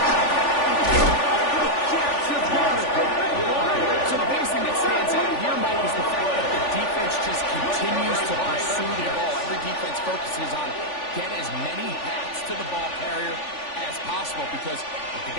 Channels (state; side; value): late; right; 3.4 ms